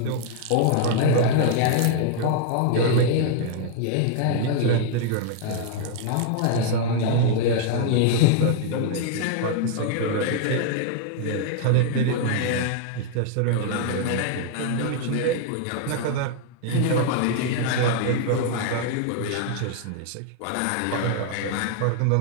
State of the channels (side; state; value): both; different; correlation 0.00